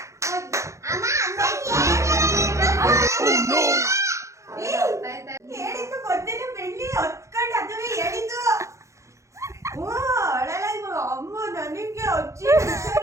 ಹೇಳಿದ್ದು ಗೊತ್ತಿಲ್ಲ, ಬೆಳ್ಳಿ ಹೊತ್ಕೊಂಡು ಅದುವೇ ಹೇಳಿದ್ದು. ಅಮ್ಮ ನನಗೆ ಅಜ್ಜಿ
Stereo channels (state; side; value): late; left; 0.15 ms